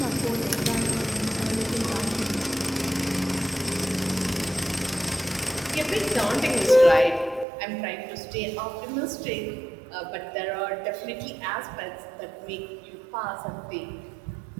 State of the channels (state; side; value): drops out; left; at 7.5 s